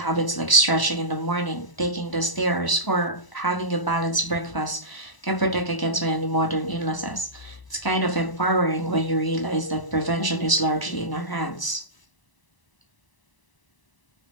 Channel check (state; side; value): late; right; 1.0 ms